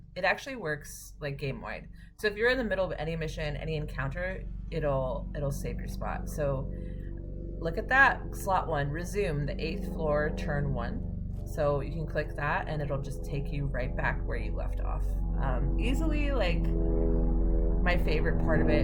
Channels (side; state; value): both; identical; correlation 1.00